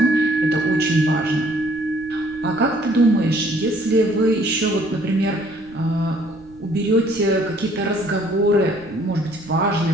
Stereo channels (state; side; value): noise; right; rumble, 25 dB below the sound